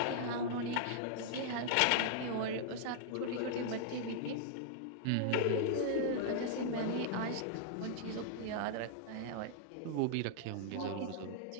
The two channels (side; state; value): both; different; correlation -0.01